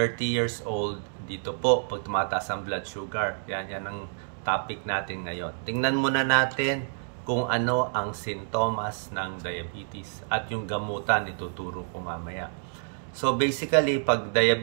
years old. Dito po, pag tumataas ang blood sugar. Yan ang topic natin ngayon. Tingnan muna natin kung ano ang sintomas ng diabetes at yung gamutan, ituturo ko mamaya. So basically, pag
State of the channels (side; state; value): left; silent; digital silence